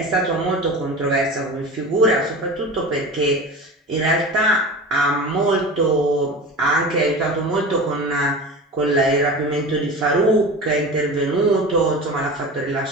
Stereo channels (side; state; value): both; normal; correlation 0.32